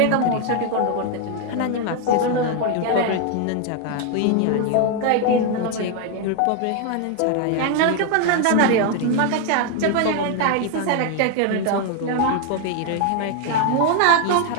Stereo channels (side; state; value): both; different; correlation 0.01